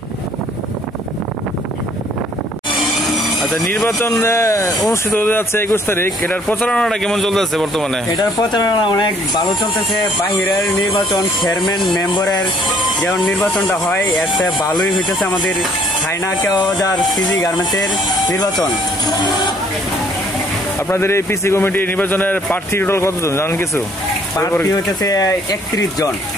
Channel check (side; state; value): both; normal; correlation 0.61